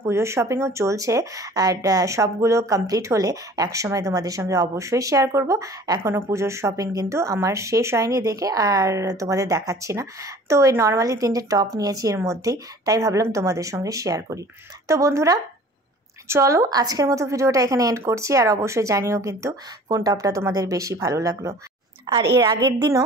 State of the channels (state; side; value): normal; both; correlation 0.47